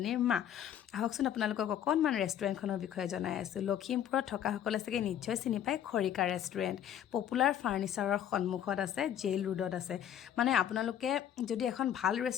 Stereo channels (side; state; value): right; quieter; 10.2 dB